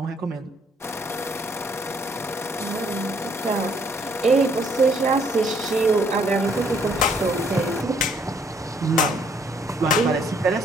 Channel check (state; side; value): normal; both; correlation 0.66